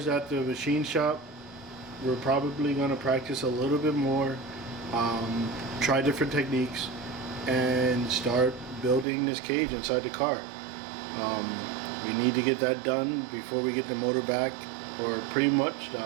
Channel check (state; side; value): drops out; left; at 9.1 s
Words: at the machine shop, we're probably gonna practice a little bit more, try different techniques, and start building this cage inside the car. We need to get that done before we get the motor back, or pretty much